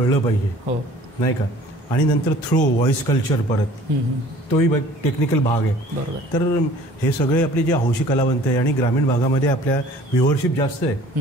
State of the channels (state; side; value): normal; both; correlation 0.50